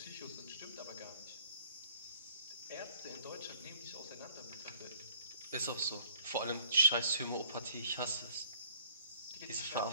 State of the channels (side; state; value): both; inverted; correlation -0.57